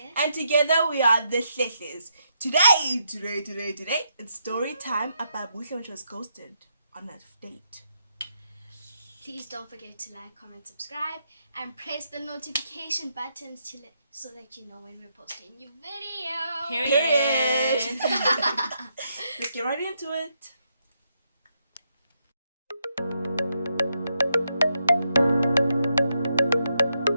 And together we are the HLEHLEz. Today, it's story time about Bushe when she was ghosted on a date. Please don't forget to like, comment, subscribe, and press the notification buttons so that you know when we're posting a new video. Period. Let's get right into it.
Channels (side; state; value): both; inverted; correlation -0.80